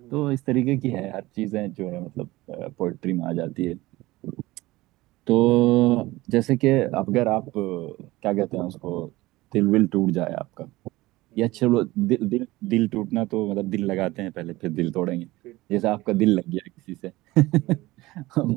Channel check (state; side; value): quieter; left; 19.2 dB